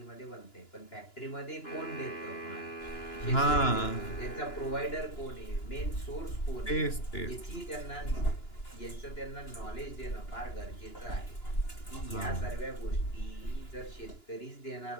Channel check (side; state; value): right; late; 2.9 ms